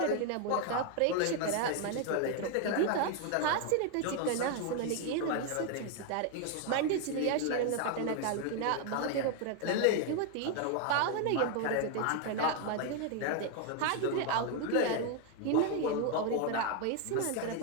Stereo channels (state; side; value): different; both; correlation 0.00